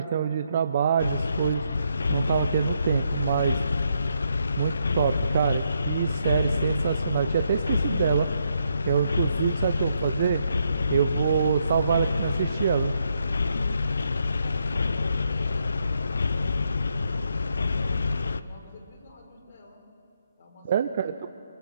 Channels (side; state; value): both; inverted; correlation -0.78